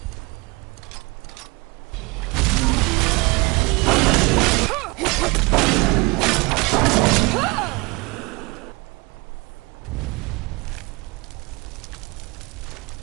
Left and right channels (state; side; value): quieter; left; 26.3 dB